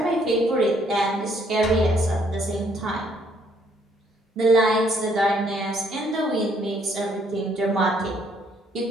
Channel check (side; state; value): both; normal; correlation 0.67